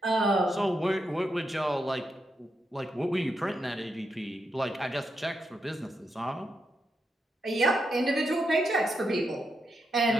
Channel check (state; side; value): normal; both; correlation 0.83